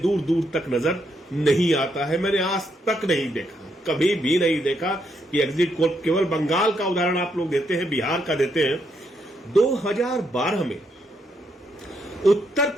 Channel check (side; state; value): both; normal; correlation 0.77